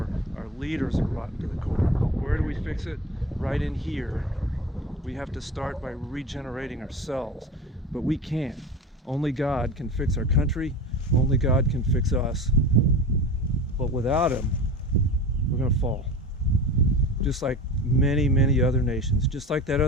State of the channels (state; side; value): normal; both; correlation 0.33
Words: our leaders are rotten to the core. Where do we fix it? Right in here. We have to start by regenerating ourselves, but we can't. Only God can fix our country. Only God can fix us. But without Him, we're going to fall. Just like many, many other nations. Just like that